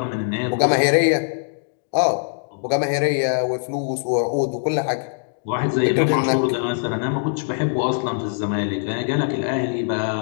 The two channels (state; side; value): silent; right; digital silence